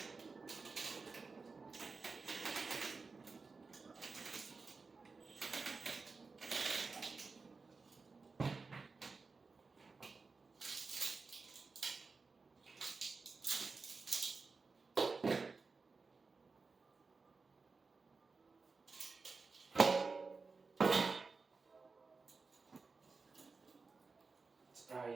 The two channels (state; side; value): quieter; left; 4.4 dB